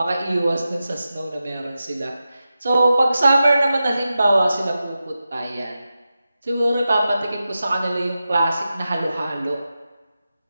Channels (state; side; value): inverted; both; correlation -0.92